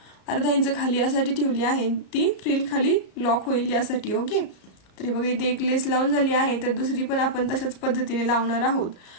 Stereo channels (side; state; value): right; late; 33 ms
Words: अर्धा इंच खाली यासाठी ठेवली आहे, ती फ्रिल खाली लॉक होईल यासाठी। ओके, तर हे बघा इथे एक लेस लावून झाली आहे, तर दुसरी पण आपण तशाच पद्धतीने लावणार आहोत।